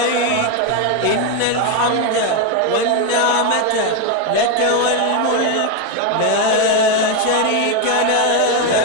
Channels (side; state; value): both; different; correlation 0.02